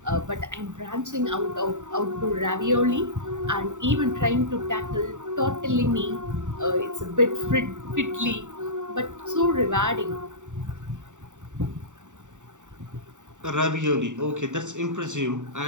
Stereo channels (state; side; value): late; left; 0.85 ms